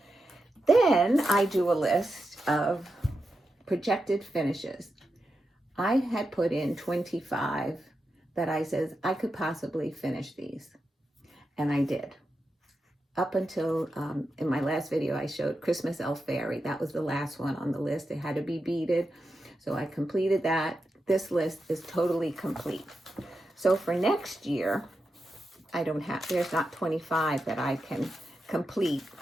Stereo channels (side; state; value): both; normal; correlation 0.89